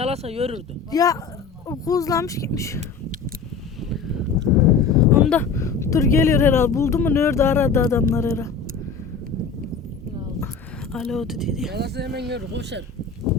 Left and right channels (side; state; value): right; quieter; 5.3 dB